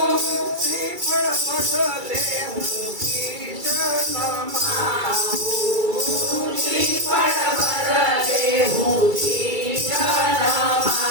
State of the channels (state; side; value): late; left; 2.3 ms